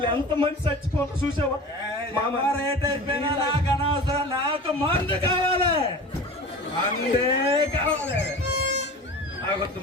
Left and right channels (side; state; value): both; normal; correlation 0.36